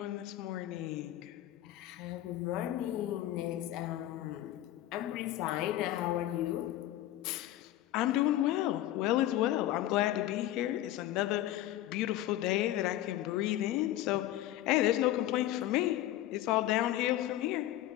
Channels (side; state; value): right; quieter; 14.1 dB